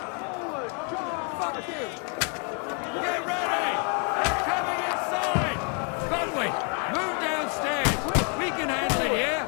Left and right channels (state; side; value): quieter; right; 38.7 dB